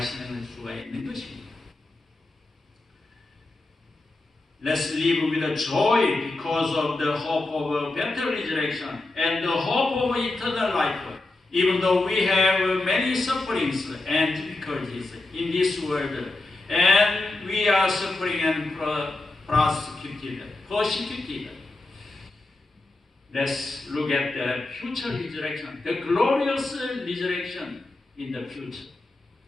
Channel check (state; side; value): quieter; right; 3.0 dB